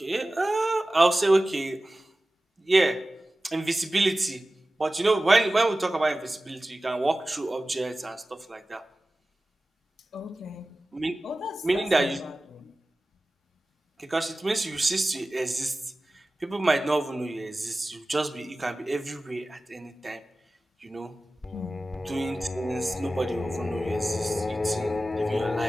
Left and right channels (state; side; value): normal; both; correlation 0.96